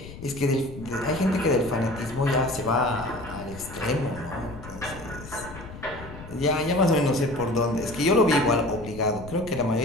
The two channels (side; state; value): left; noise; rumble, 14 dB below the sound